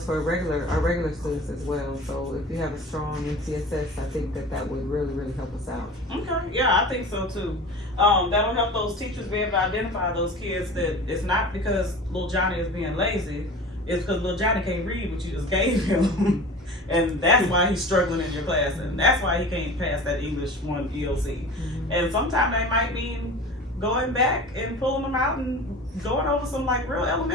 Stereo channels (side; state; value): both; normal; correlation 0.37